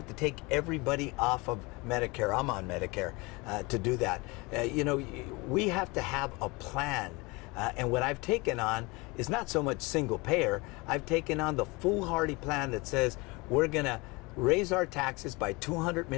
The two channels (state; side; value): quieter; right; 25.5 dB